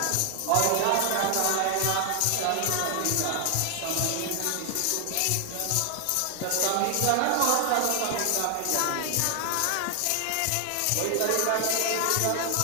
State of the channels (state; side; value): different; both; correlation 0.00